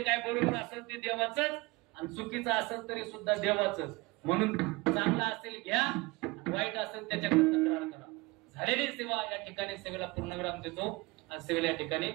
काय बरोबर असेल ते देवाचंच आणि चुकीचं असेल तरी सुद्धा देवाचंच. म्हणून चांगलं असेल घ्या वाईट असेल त्याच्याकडे तक्रार करा. झालेली सेवा या ठिकाणी सेवेला पूर्णविराम देतो आणि सेवेला या ठिकाणी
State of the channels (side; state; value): left; quieter; 23.7 dB